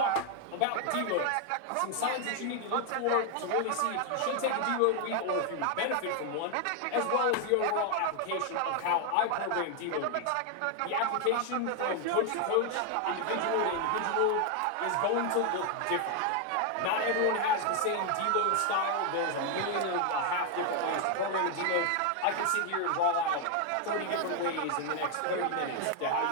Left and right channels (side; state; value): both; different; correlation 0.01